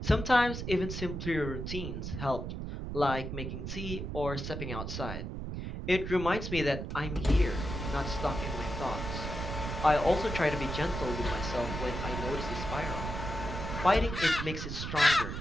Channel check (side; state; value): right; noise; rumble, 5 dB below the sound